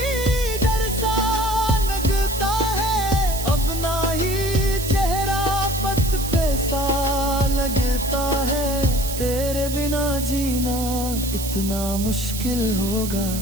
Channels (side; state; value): right; noise; hiss, 8 dB below the sound